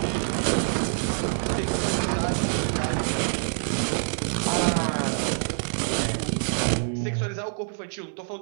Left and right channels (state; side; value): silent; left; 60 dB below the other